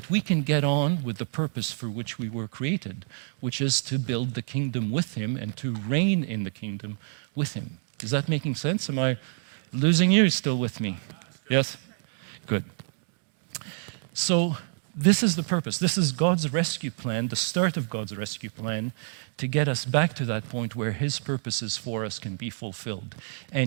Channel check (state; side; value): silent; left; digital silence